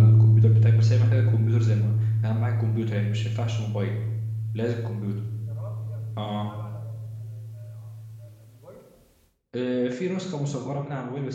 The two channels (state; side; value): identical; both; correlation 1.00